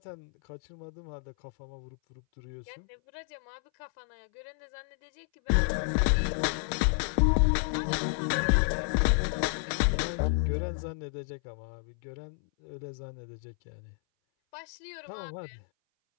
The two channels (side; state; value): right; silent; 57 dB below the other